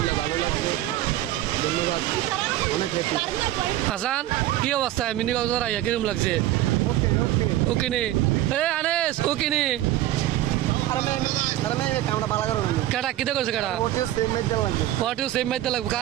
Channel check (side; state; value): left; quieter; 14.3 dB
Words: ভালো লাগছে, ধন্যবাদ, অনেক হ্যাপি। হাসান কি অবস্থা মিনি কক্সবাজার আইয়া কিরকম লাগছে? ওকে নে আনেস, ওকে নে কেটা কিতে করছে কেটা সেম মাইতে লাগবে